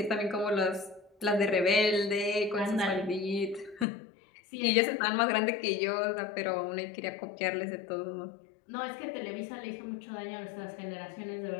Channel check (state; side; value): drops out; right; at 3.9 s